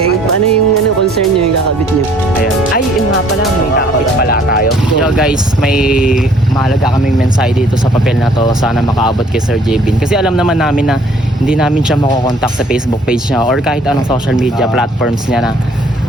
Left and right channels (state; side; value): normal; both; correlation 0.59